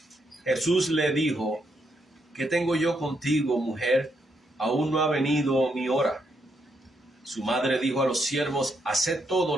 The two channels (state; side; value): normal; both; correlation 0.78